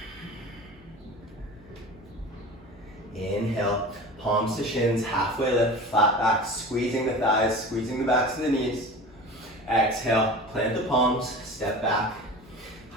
Inhale, palms to shins, halfway lift, flat back, squeezing the thighs, squeezing the backs of the knees. Exhale, plant the palms, step back,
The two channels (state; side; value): noise; left; hum, 25 dB below the sound